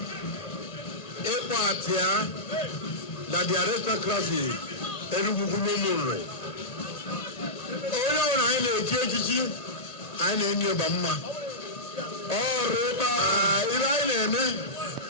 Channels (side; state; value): right; late; 1.8 ms